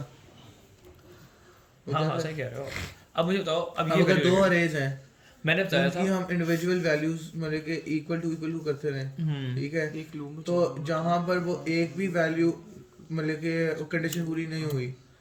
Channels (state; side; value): identical; both; correlation 1.00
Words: हाँ सही कह रहे हो। अब मुझे बताओ, अब अब ये अगर 2 अरेज हैं, मैंने बताया था कि हम इंडिविजुअल वैल्यूज मतलब के इक्वल टू करते रहे, ठीक है, एक लूप में तो जहाँ पर वो एक भी वैल्यू मतलब के कंडीशन पूरी नहीं हुई